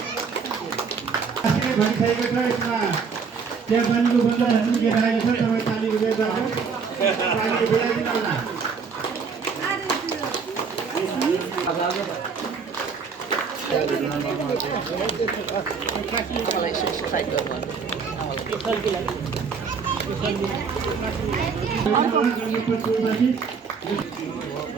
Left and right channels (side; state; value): left; quieter; 5.6 dB